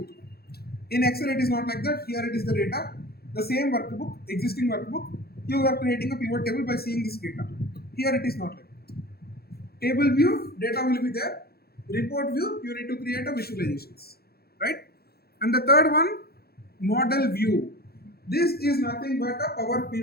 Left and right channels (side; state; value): right; late; 0.46 ms